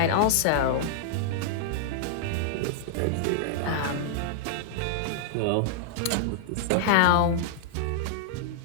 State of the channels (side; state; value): both; different; correlation -0.01